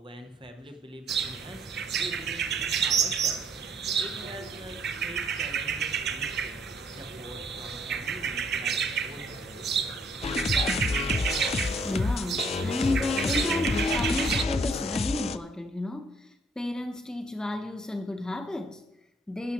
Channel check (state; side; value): normal; both; correlation 0.65